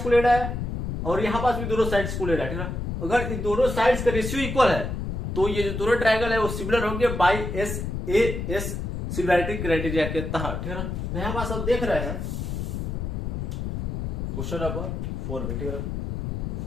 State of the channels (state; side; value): noise; left; rumble, 3 dB below the sound